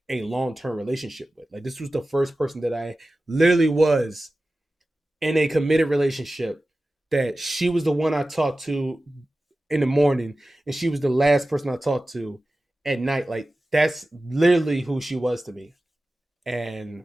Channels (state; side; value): normal; both; correlation 0.95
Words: a long term relationship with. Like this was the first person that I literally was in a committed relationship, that she was the one I talked to in the morning and she was the last person I talked to at night. Like that's literally who she was to me. And